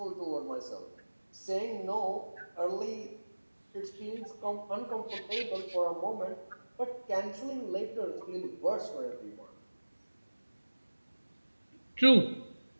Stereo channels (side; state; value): both; inverted; correlation -1.00